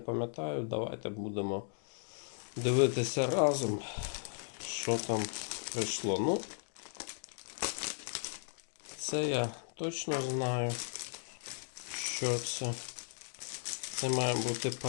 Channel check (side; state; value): right; silent; digital silence